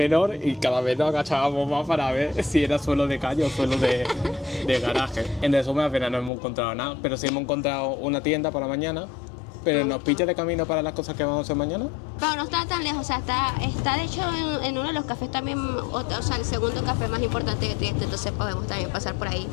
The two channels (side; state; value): right; drops out; at 6.3 s